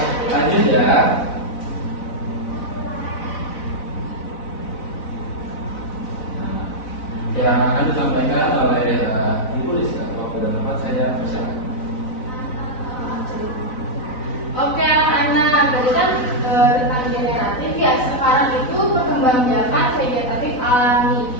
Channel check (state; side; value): late; right; 4.0 ms